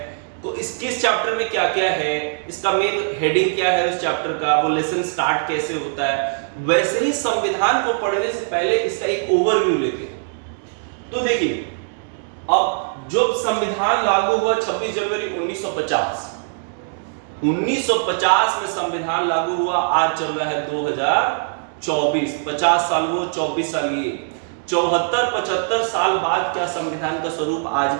तो किस चैप्टर में क्या क्या है, इसका मेन हेडिंग क्या है उस चैप्टर का, वो लेसन स्टार्ट कैसे होता है। वैसे ही संविधान को पढ़ने से पहले इसका एक ओवरव्यू लेते हैं। तो देखिए, अब जब संविधान लागू हुआ 26 जनवरी 1950, 1950 में संविधान लागू हुआ, आज चल रहा है 2024, 50 साल वो, 24 साल ये, 74-75 साल बाद क्या संविधान का स्वरूप आज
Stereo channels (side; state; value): left; silent; digital silence